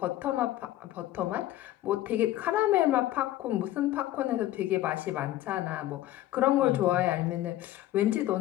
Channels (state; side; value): quieter; right; 14.6 dB